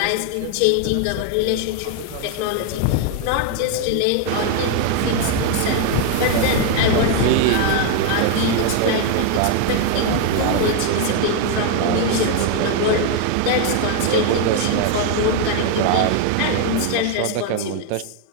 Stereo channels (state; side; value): different; both; correlation 0.01